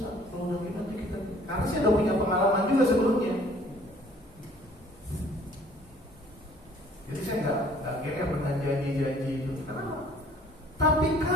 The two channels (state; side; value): normal; both; correlation 0.55